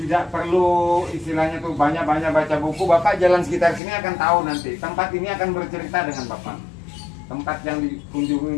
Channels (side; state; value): right; drops out; at 3.8 s